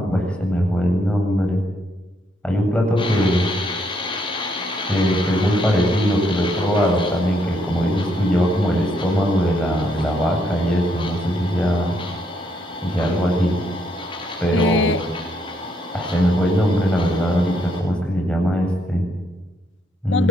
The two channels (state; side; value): normal; both; correlation 0.74